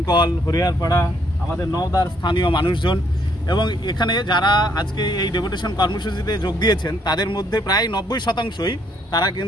হরিয়ারপাড়া, আমাদের নওদার স্থানীয় মানুষজন এবং এখানে যারা আজকে এই ডেপুটেশন কর্মসূচিতে যোগ দিয়েছেন তাদের মধ্যে প্রায় 90%ই তারা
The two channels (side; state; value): both; normal; correlation 0.69